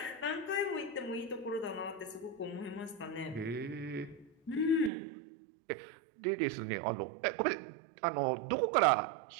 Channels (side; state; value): left; drops out; at 4.9 s